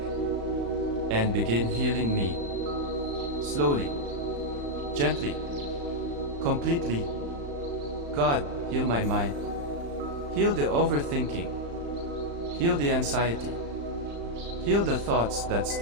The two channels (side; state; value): left; late; 35 ms